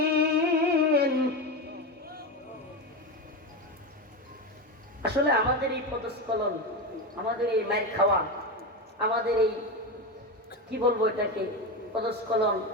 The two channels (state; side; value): normal; both; correlation 0.17